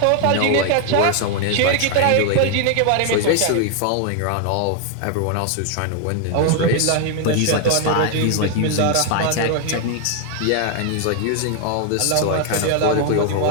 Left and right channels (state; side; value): different; both; correlation 0.00